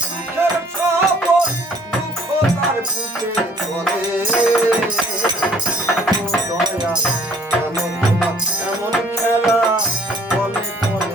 সুখের স্বপন, দুঃখ তার বুকে চলে, ও দয়া কেন তোমার এমন খেলা বলে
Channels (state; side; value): normal; both; correlation 0.57